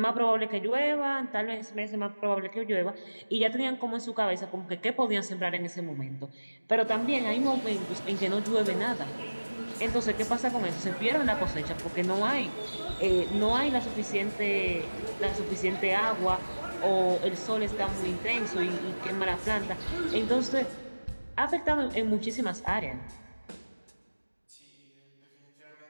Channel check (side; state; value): both; inverted; correlation -1.00